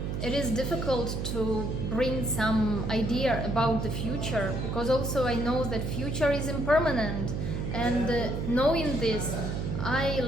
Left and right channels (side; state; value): right; noise; hum, 3 dB below the sound